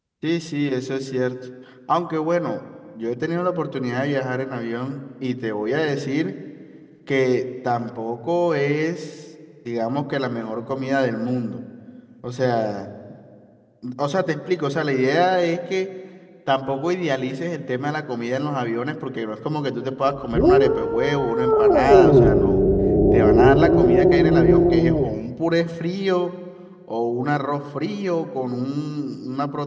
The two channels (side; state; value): both; identical; correlation 1.00